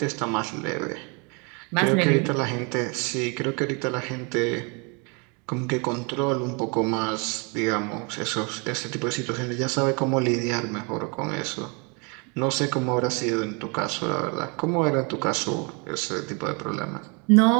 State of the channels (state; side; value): quieter; left; 32.7 dB